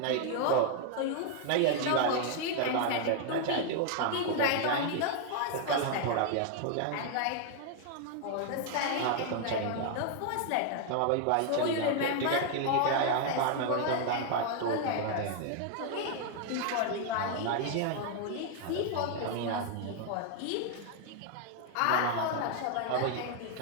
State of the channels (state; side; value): different; both; correlation 0.00